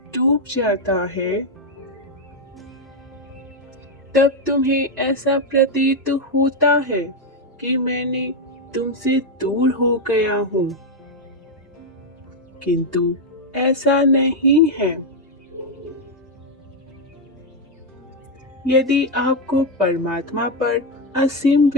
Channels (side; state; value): both; normal; correlation 0.04